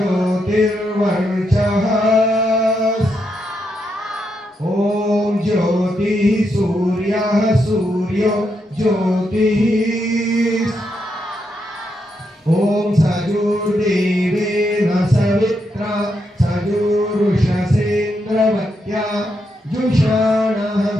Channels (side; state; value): both; normal; correlation 0.81